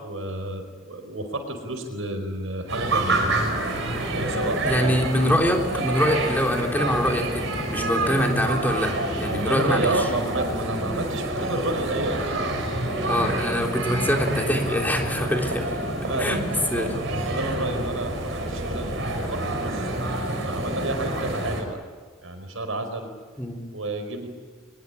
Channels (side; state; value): both; normal; correlation 0.43